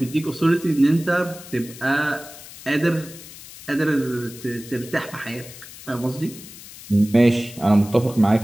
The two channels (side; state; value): left; noise; hiss, 16 dB below the sound